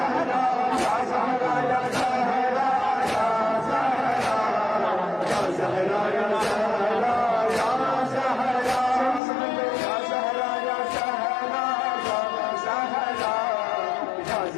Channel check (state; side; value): drops out; right; at 9.2 s